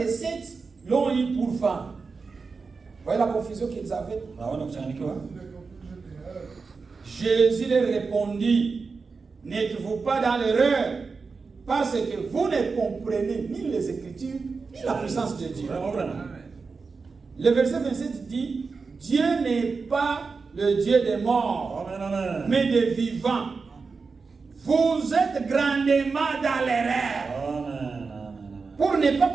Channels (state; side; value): quieter; left; 4.6 dB